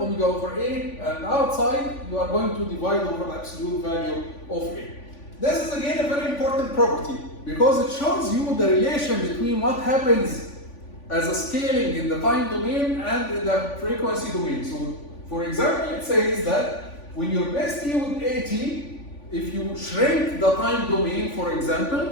over a, and outside you are going to divide over the absolute value of a. This is again a very important property because it shows you the relation between what happens as a scaling in the time domain and in the frequency domain. So, for example, it says that when you replace t with at, if you shrink the time domain, for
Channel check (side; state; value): right; late; 3.5 ms